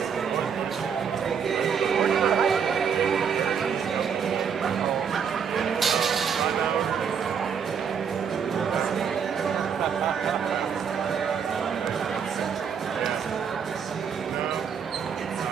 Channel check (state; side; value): quieter; left; 7.0 dB